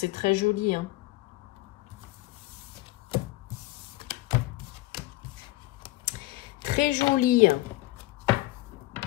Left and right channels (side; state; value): right; quieter; 18.5 dB